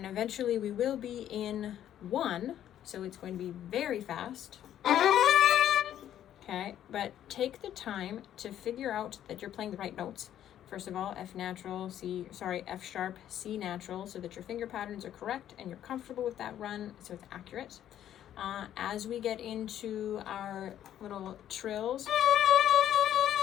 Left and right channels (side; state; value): right; quieter; 11.1 dB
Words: eventually we will be in 1, so it's going to be very fast. Okay, but take the time to figure out that you're playing the right notes. First of all, F sharp, C natural, so that your finger patterns are correct and you're comfortable with that run, so it's accurate. As we get into our little trills,